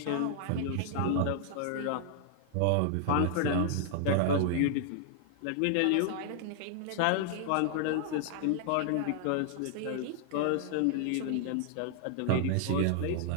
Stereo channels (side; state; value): both; different; correlation 0.00